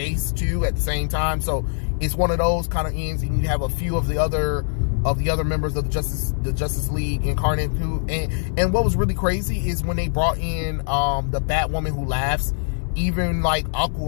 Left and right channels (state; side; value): silent; right; 64 dB below the other